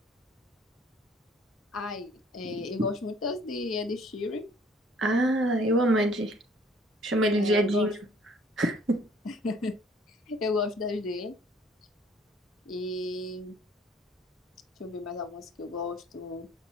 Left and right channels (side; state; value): both; normal; correlation 0.57